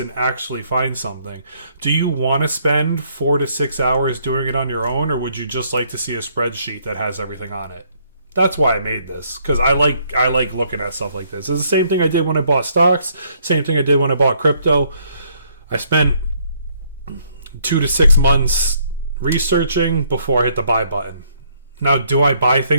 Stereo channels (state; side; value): inverted; both; correlation -0.67